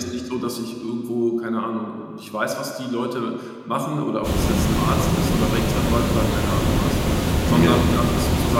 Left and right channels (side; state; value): both; identical; correlation 1.00